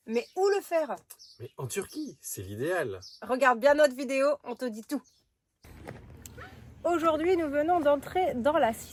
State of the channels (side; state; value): both; identical; correlation 1.00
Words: Mais où le faire? Mais en Turquie, c'est l'idéal. Regarde bien notre vidéo, on te dit tout. Aujourd'hui, nous venons d'entrer dans la